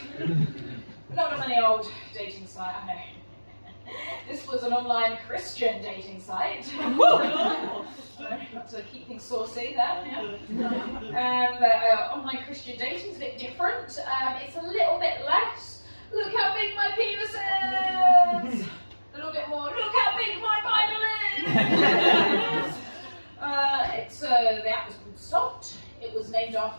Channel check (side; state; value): both; inverted; correlation -1.00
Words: Not any old dating site, I know. This was an online Christian dating site. Got to keep things saucy there. Yeah. Online Christian dating is a bit different. It's a little bit less. Look how big my penis is. A little bit more. Look how big my Bible is. The app was called Salt. It was named